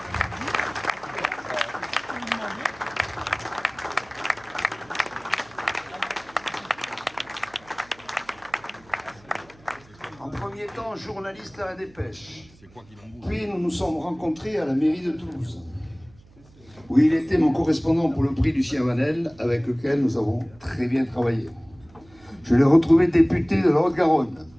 En premier temps, journaliste à la Dépêche. Puis nous nous sommes rencontrés à la mairie de Toulouse, où il était mon correspondant pour le prix Lucien Vanel, avec lequel nous avons très bien travaillé. Je l'ai retrouvé député de la Haute-Garonne,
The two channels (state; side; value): noise; right; hum, 26 dB below the sound